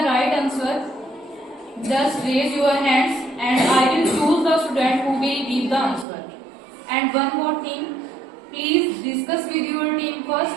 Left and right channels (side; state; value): left; drops out; at 6.1 s